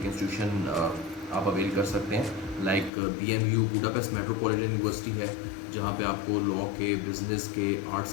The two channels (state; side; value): drops out; right; at 2.9 s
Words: इंस्टीट्यूशन आप अवेल कर सकते हैं। Like BMU Budapest metropolitan university है, जहाँ पे आपको लॉ के, बिज़नेस के, आर्ट्स